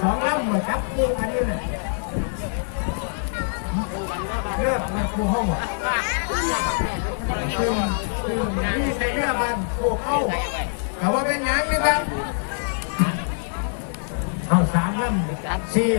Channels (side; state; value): right; silent; 63 dB below the other